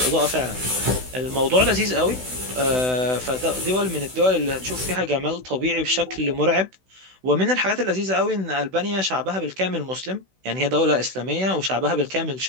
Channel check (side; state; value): left; late; 16 ms